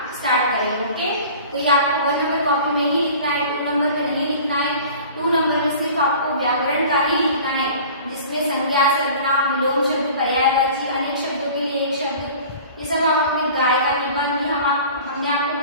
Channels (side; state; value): both; inverted; correlation -0.43